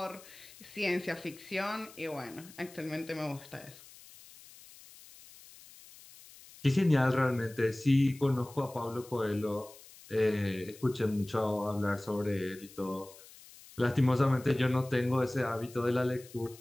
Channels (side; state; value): left; noise; hiss, 21 dB below the sound